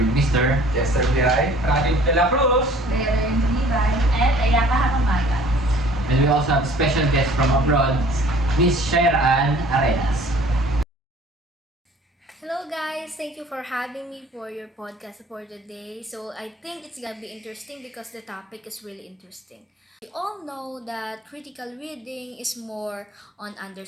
Mr. Chester Bihay, Radim de la Cruz, Leonard Libay, at Ayaka Hakamaga. And we also have special guest from abroad, Miss Shaira Ann Arenas. Hello guys, thank you for having me for your podcast for today. So I think it's gonna be interesting because the topic is really interesting. We all know that critical reading is more on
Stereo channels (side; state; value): both; normal; correlation 0.52